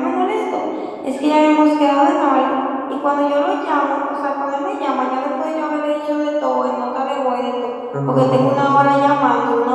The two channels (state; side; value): identical; both; correlation 1.00